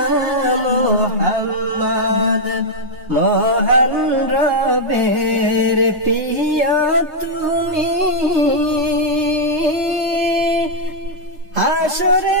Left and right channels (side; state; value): left; late; 3.2 ms